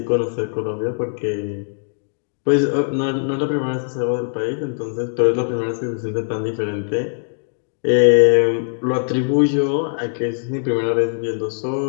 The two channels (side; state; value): right; silent; digital silence